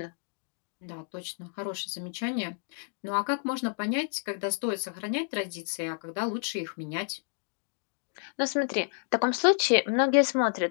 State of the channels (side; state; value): right; silent; 58 dB below the other